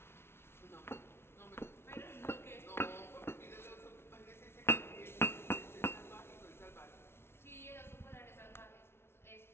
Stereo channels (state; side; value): late; right; 0.12 ms